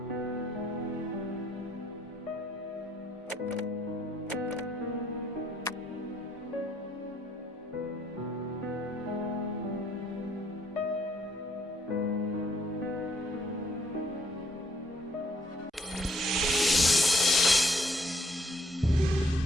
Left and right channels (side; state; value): both; normal; correlation 0.66